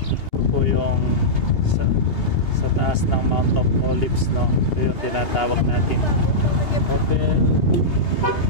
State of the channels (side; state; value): right; late; 2.8 ms